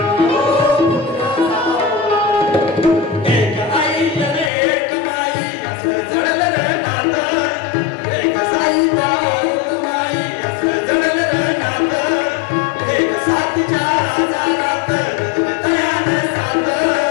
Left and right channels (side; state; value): right; drops out; at 4.5 s